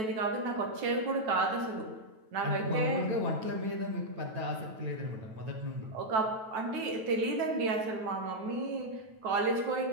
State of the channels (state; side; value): late; left; 9.2 ms